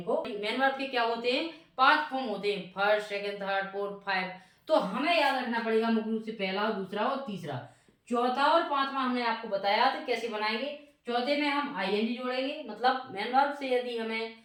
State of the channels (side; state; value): both; identical; correlation 1.00